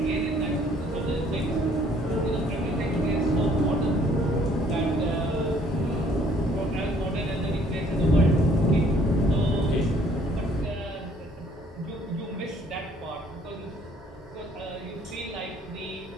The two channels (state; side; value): normal; both; correlation 0.61